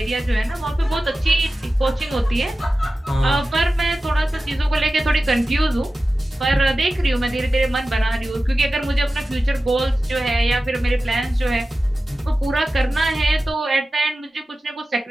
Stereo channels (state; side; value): normal; both; correlation 0.94